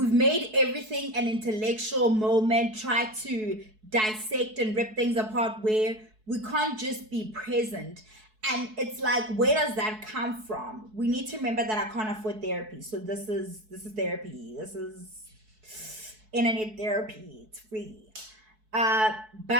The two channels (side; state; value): left; late; 4.6 ms